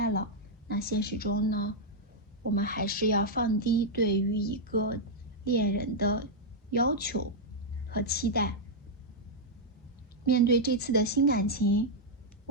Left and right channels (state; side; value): normal; both; correlation -0.03